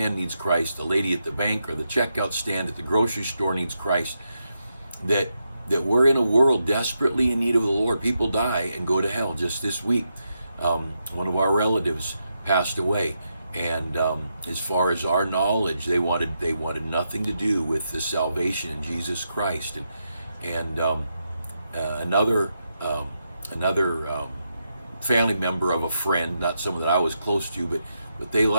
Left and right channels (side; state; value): both; inverted; correlation -0.84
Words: needs Christ, the lady at the bank or the checkout stand at the grocery store needs Christ, that we're in a world desperately in need of the Lord. People die and go to hell. Just this week, one of our relatives passed away, and as far as our knowledge, they wanted nothing to do with the salvation in Jesus Christ. And another family member of a friend, not someone that I was close to, but they